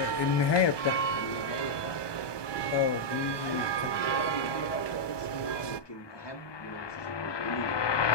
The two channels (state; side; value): late; right; 1.2 ms